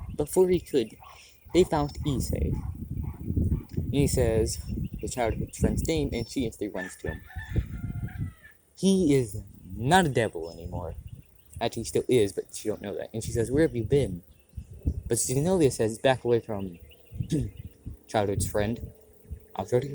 Before he could, they found Issei. He says the childhood friend's name, and she instantly runs to him. He is not a devil anymore. Actually, he still is, but she don't know that. And she says, "Where have you been?" But Zenobia says, "Back away from childhood's friend. I'll tell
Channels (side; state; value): both; identical; correlation 1.00